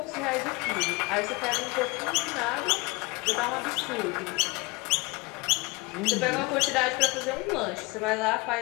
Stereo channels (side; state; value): right; quieter; 26.0 dB